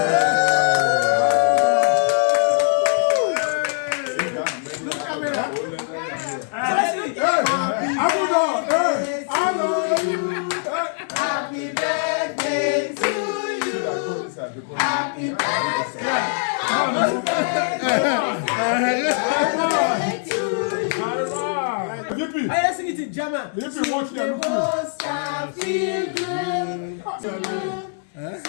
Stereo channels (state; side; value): silent; right; 64 dB below the other